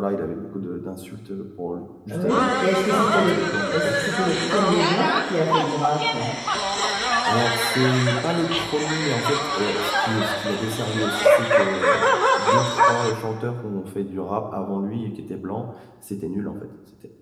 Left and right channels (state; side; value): identical; both; correlation 1.00